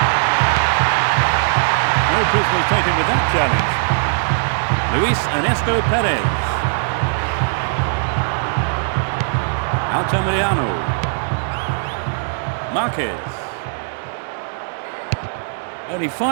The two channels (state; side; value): silent; left; digital silence